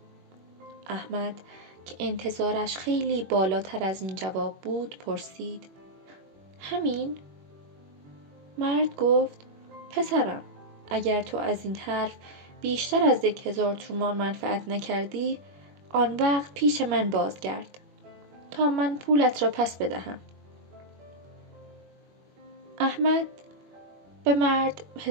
احمد که انتظارش خیلی بالاتر از این جواب بود پرسید: همین؟ مرد گفت: پسرم، اگر تو از این حرف بیشتر از 1000 تومان منفعت نکردی آن وقت پیش من بازگرد تا من پولت را پس بدهم. احمد به مرد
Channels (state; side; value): late; left; 21 ms